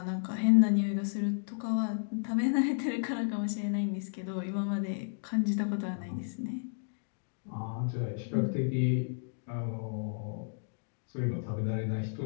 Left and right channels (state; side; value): silent; right; digital silence